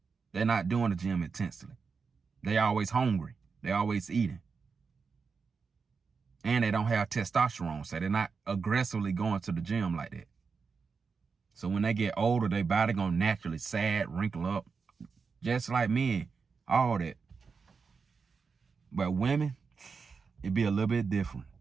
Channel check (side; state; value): left; quieter; 5.2 dB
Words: they're not doing the gym intensely. They always hungry. They always eating. And they don't have testosterone, so they're not aggressively going to the gym like that. So when they get older, their body gonna naturally sag, wrinkle up, just like men, all that. But women, it'd be a little bit different.